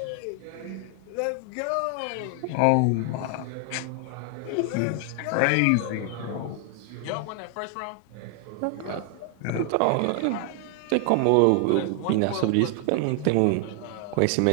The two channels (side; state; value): both; different; correlation 0.00